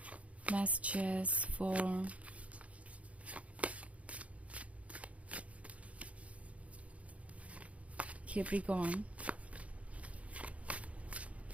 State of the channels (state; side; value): late; left; 0.065 ms